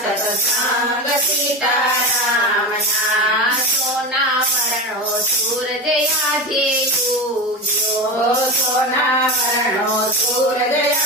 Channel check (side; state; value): both; normal; correlation 0.22